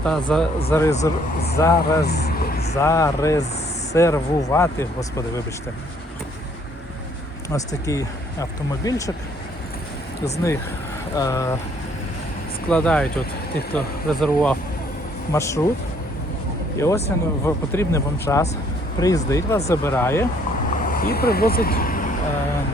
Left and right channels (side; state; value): both; normal; correlation 0.63